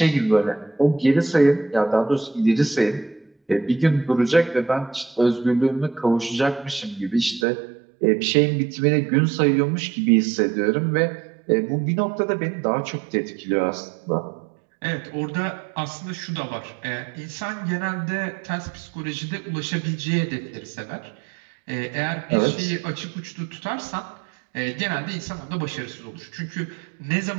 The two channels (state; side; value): drops out; left; at 7.5 s